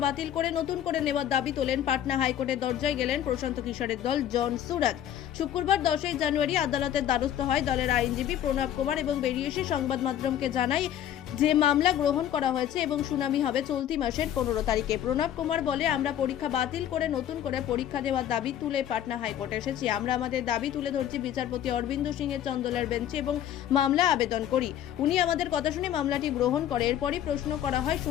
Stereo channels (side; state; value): right; quieter; 10.9 dB